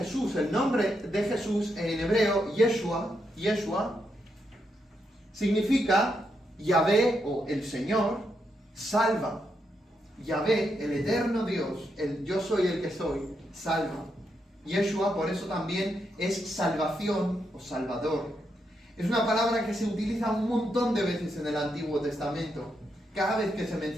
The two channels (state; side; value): normal; both; correlation 0.81